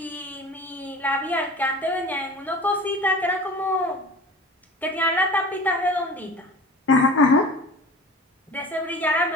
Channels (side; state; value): both; normal; correlation 0.39